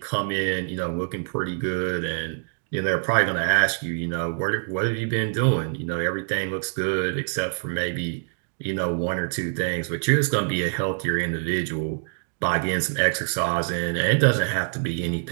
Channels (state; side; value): silent; left; digital silence